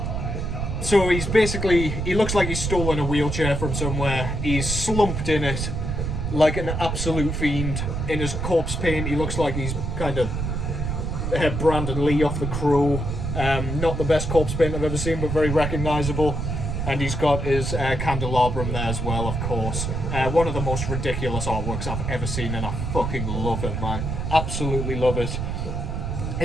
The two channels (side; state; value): right; noise; rumble, 2 dB below the sound